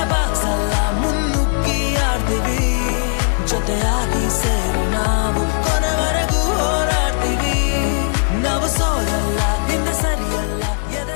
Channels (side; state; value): right; silent; 63 dB below the other